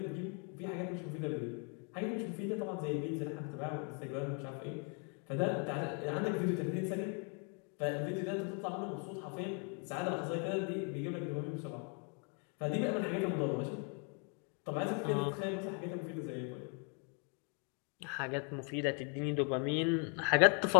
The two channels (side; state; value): right; quieter; 38.5 dB